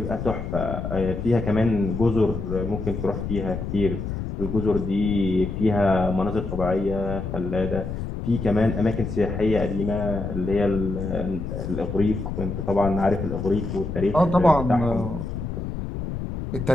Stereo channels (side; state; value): left; noise; rumble, 5 dB below the sound